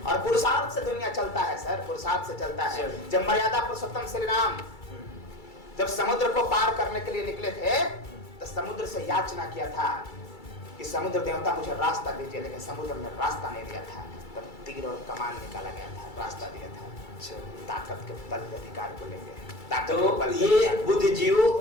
और पुरुषार्थ से दुनिया चलता है सर, पुरुषार्थ से चलता है। जब मर्यादा पुरुषोत्तम श्री राम जब समुद्र को पार करने के लिए निकले थे, तो समुद्र से याचना किया था कि समुद्र देवता मुझे रास्ता दीजिए, लेकिन समुद्र ने रास्ता नहीं दिया था। तब तीर और कमान निकाला गया था, रास्ता दिया था। ताकत के बल पे अधिकार को लेंगे। तो ये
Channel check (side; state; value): right; late; 2.3 ms